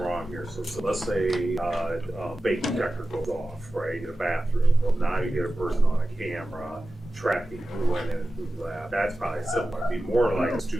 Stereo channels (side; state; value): both; normal; correlation 0.94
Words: wrong here. So let's say a fake detector goes off, right, in a bathroom. Well, now you get a person on a camera tracking who went in and who left. That's probably similar. It'd be more like a